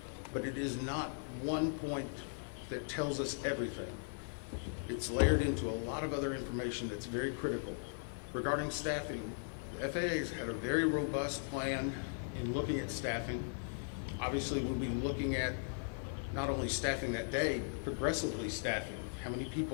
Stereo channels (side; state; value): right; silent; 52 dB below the other